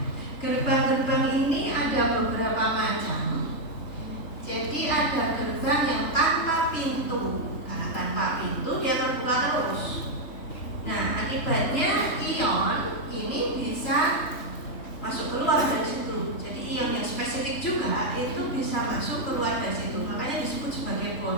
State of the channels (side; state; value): right; late; 3.4 ms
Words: gerbang-gerbang ini ada beberapa macam. Jadi ada gerbang yang tanpa pintu. Karena tanpa Akibatnya ion ini bisa masuk keluar dari situ. Jadi ion yang spesifik juga itu bisa masuk keluar dari situ. Makanya disebut sebagai